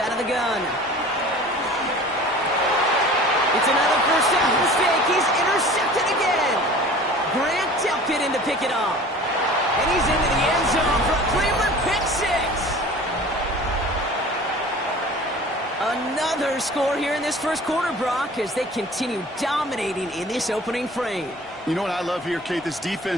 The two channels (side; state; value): both; normal; correlation 0.43